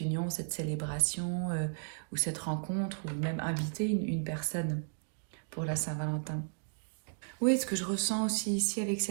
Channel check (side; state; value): left; silent; digital silence